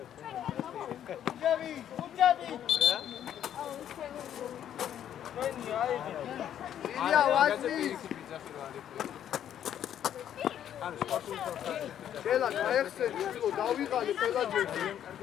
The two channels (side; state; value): right; quieter; 10.2 dB